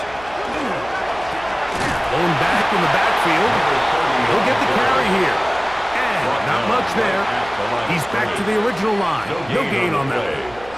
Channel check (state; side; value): noise; right; hum, 20 dB below the sound